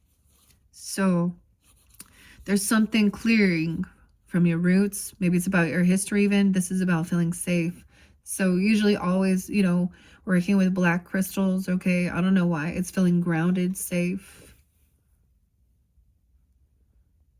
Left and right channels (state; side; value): identical; both; correlation 1.00